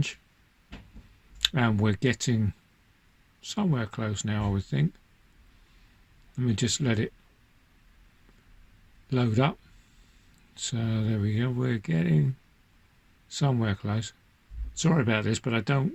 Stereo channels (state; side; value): identical; both; correlation 1.00